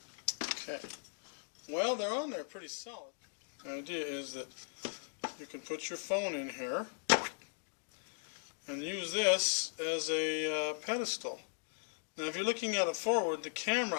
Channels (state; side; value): silent; right; digital silence